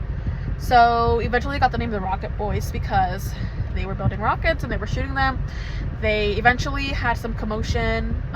So eventually they got the name of the Rocket Boys because they were building rockets and they were shooting them. They eventually had some commotion.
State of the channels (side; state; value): both; identical; correlation 1.00